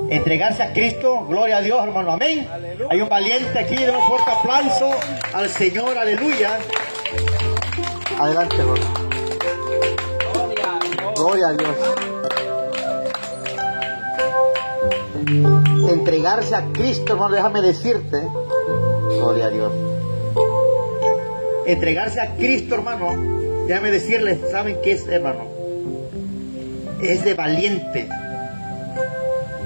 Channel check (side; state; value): both; inverted; correlation -1.00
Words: Entregarse a Cristo, gloria a Dios, hermano. Amén. Aleluya. Hay un valiente aquí, de un fuerte aplauso al Señor. Aleluya. Adelante, hermano. Gloria a Dios. Entregarse a Cristo, hermano, déjame decirte, gloria a Dios. Entregarse a Cristo, hermano, déjame decirles, ¿saben qué es, hermano? Es de valiente.